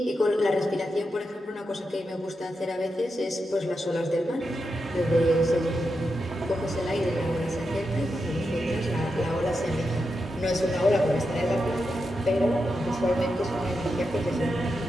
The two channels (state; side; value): normal; both; correlation 0.87